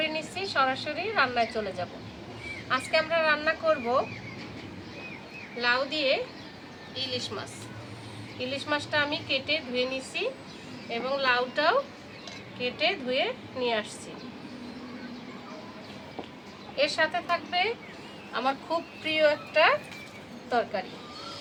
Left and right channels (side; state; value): both; identical; correlation 1.00